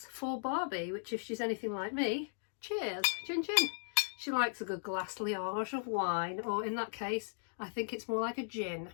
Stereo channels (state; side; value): silent; right; digital silence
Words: for Barbie, which if she's anything like me, cheers, chin chin. She likes a good glass liage of wine, or in that case I think it's more like a gin.